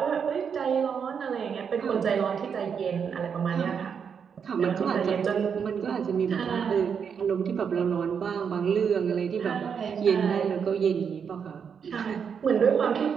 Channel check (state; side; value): quieter; left; 6.9 dB